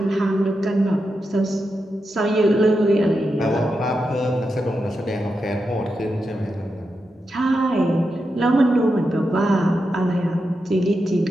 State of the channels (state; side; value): normal; both; correlation 0.87